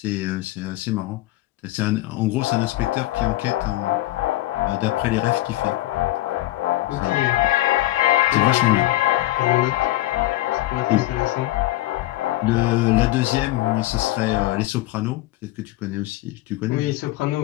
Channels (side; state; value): right; quieter; 16.6 dB